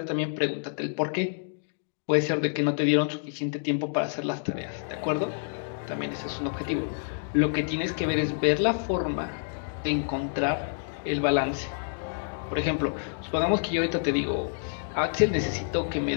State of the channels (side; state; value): right; silent; digital silence